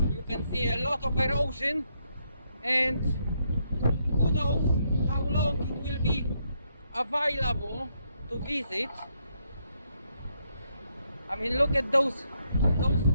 you can see a lot of erosion, and who knows how long it will be available to visit. I mean, look at those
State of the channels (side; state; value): both; inverted; correlation -0.77